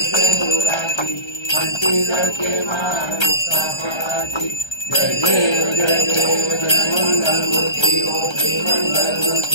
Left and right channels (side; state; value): right; late; 1.3 ms